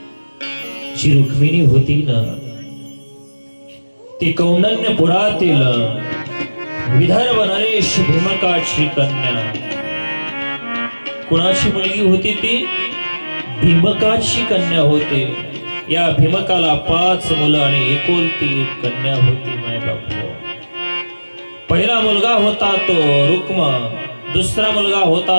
जी रुक्मिणी होती ना, ती कौंडण्यपुरातील विदर्भ नरेश भीमकाची कन्या. कुणाची मुलगी होती ती? भीमकाची कन्या होती. या भीमकाला 5 मुलं आणि एकुलती 1 कन्या होती. माय बापू, पहिला मुलगा होता तो रुक्म, दुसरा मुलगा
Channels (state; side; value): inverted; both; correlation -1.00